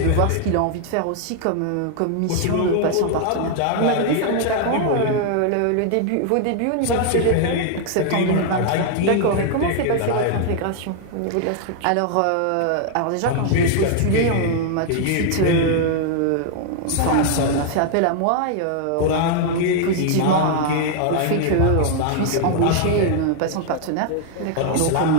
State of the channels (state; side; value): different; both; correlation 0.00